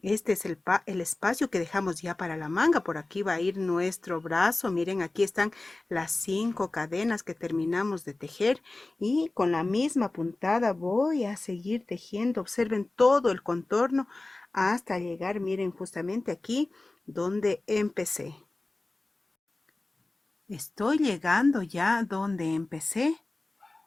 este es el espacio que dejamos ya para la manga. Por aquí va a ir nuestro brazo. Miren, aquí están las 5 cadenas que terminamos de tejer. Y con la misma puntada voy a seguir tejiendo. Observen todo el contorno hasta llegar, miren, justamente aquí donde empecé. Estoy llegando ya donde empecé.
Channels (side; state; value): right; quieter; 3.0 dB